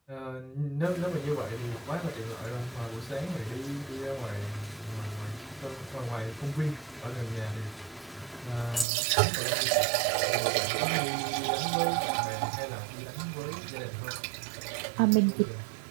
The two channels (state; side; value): drops out; left; at 8.8 s